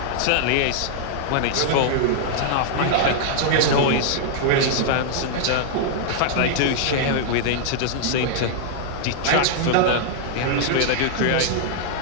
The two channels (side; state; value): both; different; correlation -0.01